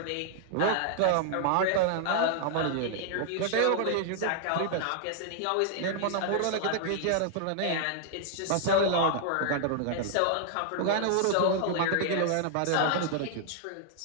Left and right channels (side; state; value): both; different; correlation -0.01